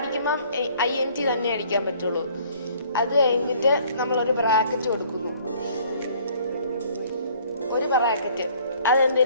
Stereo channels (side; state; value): both; inverted; correlation -0.57